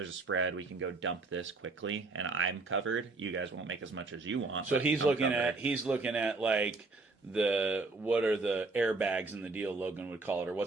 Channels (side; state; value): left; quieter; 3.6 dB